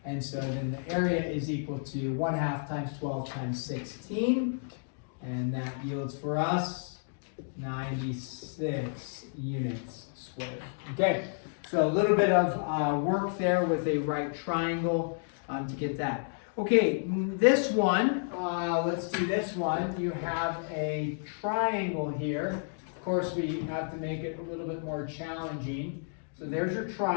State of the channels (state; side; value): silent; right; digital silence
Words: And so then the area is equal to 1/2 times 12 times 16. And that yields for us 96 units squared. Okay, so a little bit of work there with a right triangle to get that. Okay, this one, let's do this one. You have a triangle here. Of course, we have to make it a little bit more challenging. So there's your